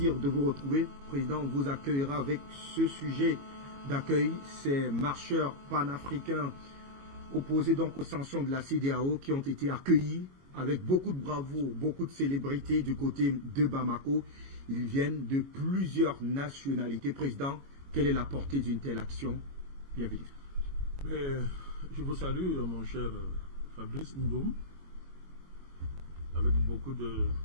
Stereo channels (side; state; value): left; late; 22 ms